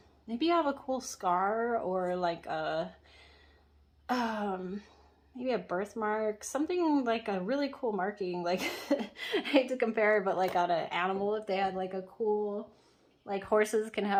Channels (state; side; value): identical; both; correlation 1.00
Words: Maybe you have a cool scar, or like a maybe a birthmark, something like a really cool marking. Like I hate to compare, but like on an animal, if they had like a cool, like horses can